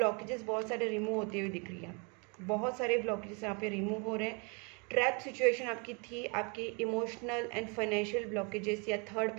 बहुत सारे remove होते हुए दिख रही है, बहुत सारे ब्लॉकेजेस यहाँ पे रिमूव हो रहे हैं। ट्रैप सिचुएशन आपकी थी, आपकी इमोशनल एंड फाइनेंशियल ब्लॉकेजेस या थर्ड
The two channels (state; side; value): quieter; left; 33.6 dB